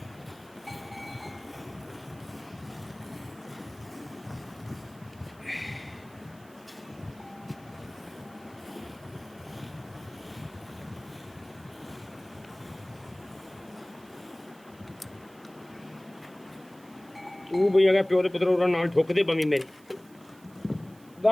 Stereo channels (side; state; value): right; noise; hiss, 26 dB below the sound